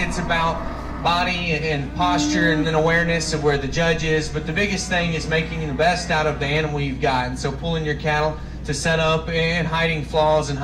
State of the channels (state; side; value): identical; both; correlation 1.00